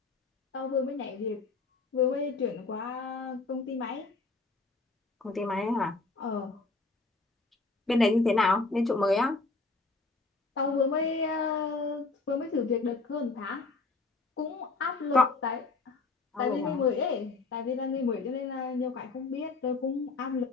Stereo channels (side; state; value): right; quieter; 3.8 dB